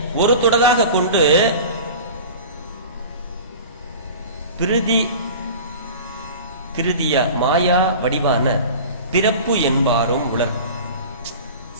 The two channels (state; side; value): inverted; both; correlation -0.37